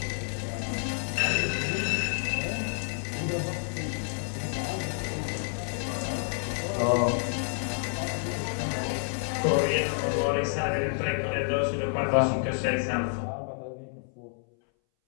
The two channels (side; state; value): right; silent; 59 dB below the other